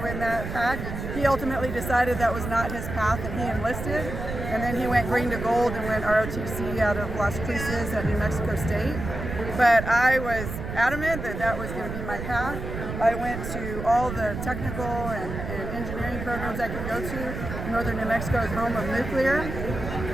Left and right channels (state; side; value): noise; right; rumble, 6 dB below the sound